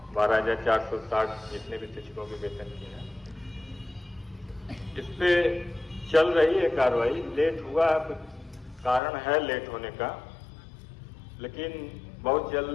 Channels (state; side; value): drops out; right; at 9.0 s